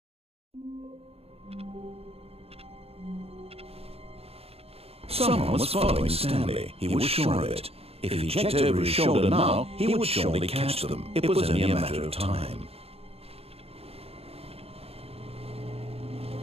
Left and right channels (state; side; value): late; left; 0.29 ms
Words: Someone was following Stanley. He was sure of it. If he checked over his shoulder now, he would surely catch them. It was only a matter of time.